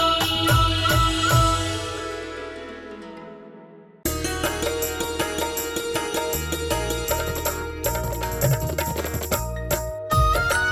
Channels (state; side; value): identical; both; correlation 1.00